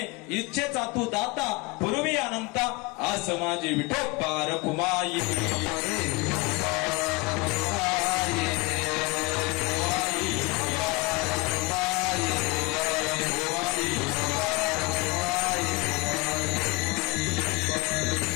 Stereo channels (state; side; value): quieter; right; 25.5 dB